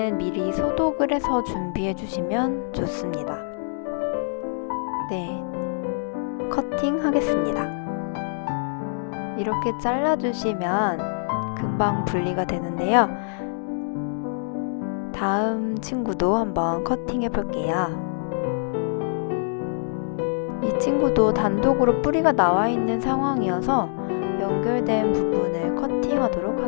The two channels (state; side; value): silent; right; digital silence